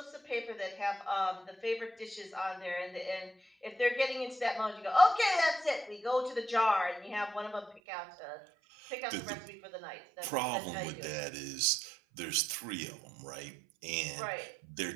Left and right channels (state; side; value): drops out; left; at 7.8 s